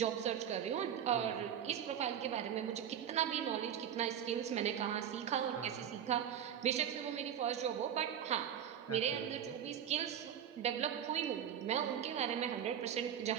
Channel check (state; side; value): quieter; left; 9.2 dB